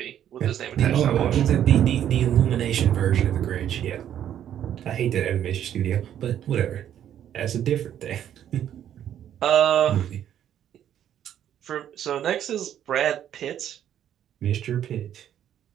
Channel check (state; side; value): quieter; left; 10.4 dB